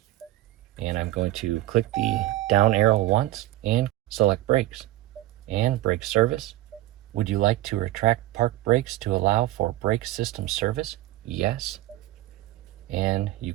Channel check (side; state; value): left; quieter; 16.1 dB